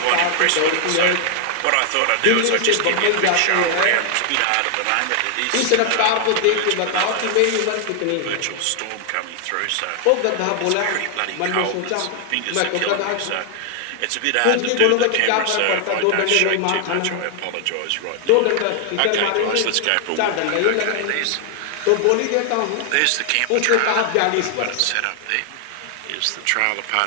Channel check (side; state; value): both; different; correlation 0.00